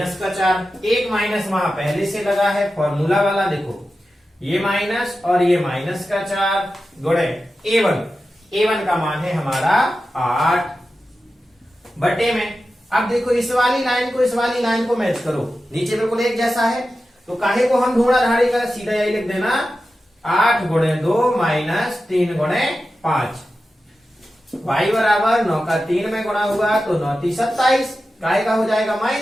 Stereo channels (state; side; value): normal; both; correlation 0.92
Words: का 4, एक माइनस वहां पहले से लगा है फॉर्मूला वाला, देखो ये माइनस और ये माइनस का 4 गुणे a1 का मान है हमारा 8 बटे में। अब देखो इस वाली लाइन को मैच करो, नीचे बिल्कुल एक जैसा है, तो काहे को हम ढूंढा धाड़ी कर, सीधा यही लिख देना 8 गुणे 2 माइनस 3 गुणे 5। y बराबर 9 का 3 में गुणा हुआ तो 9 3 27, काहे का हो जाएगा